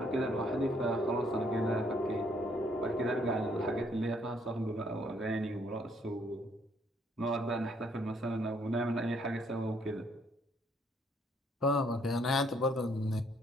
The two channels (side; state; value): both; normal; correlation 0.68